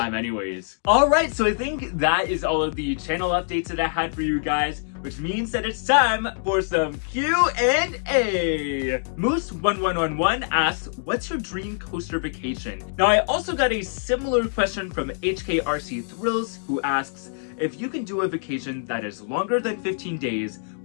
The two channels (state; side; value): silent; right; digital silence